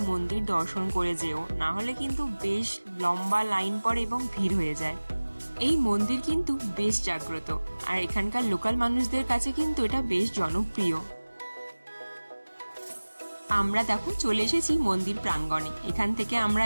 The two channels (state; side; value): inverted; both; correlation -1.00